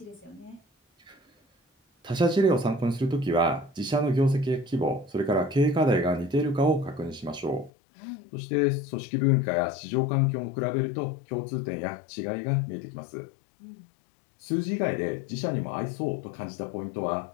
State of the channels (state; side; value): drops out; right; at 7.7 s